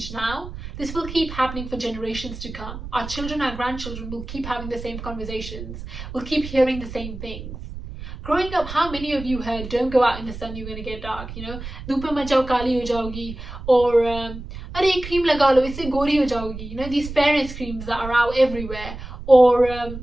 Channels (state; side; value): noise; right; rumble, 11 dB below the sound